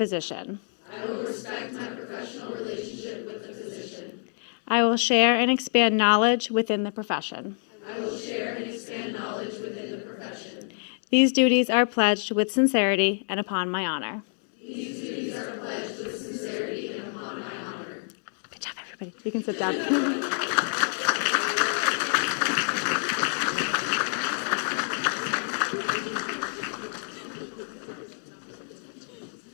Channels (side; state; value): right; silent; 60 dB below the other